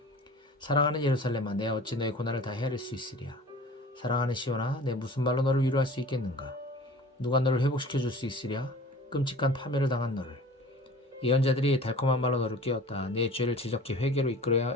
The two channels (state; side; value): normal; both; correlation 0.42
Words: 사랑하는 예루살렘아, 내 어찌 너의 고난을 다 헤아릴 수 있으랴. 사랑하는 시온아, 내 무슨 말로 너를 위로할 수 있겠는가. 누가 너를 회복시켜 줄 수 있으랴. 끔찍한 파멸을 당한 너를. 예언자들이 달콤한 말로 너를 깨웠다. 내 죄를 지적히 회개로